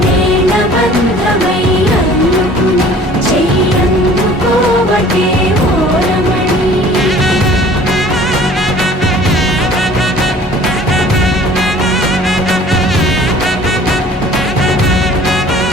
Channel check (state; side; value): normal; both; correlation 0.50